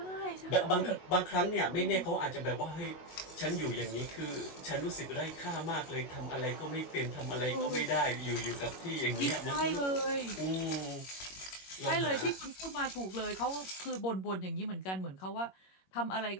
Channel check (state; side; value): late; right; 21 ms